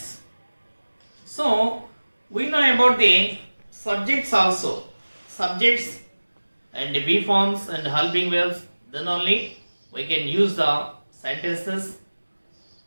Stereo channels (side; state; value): both; inverted; correlation -1.00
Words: So we know about the subjects also. Subjects and the be forms and helping verbs. Then only we can use the sentences.